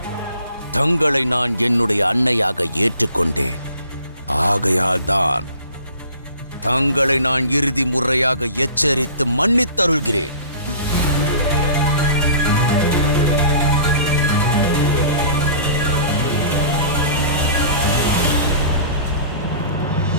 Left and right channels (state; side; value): inverted; both; correlation -0.46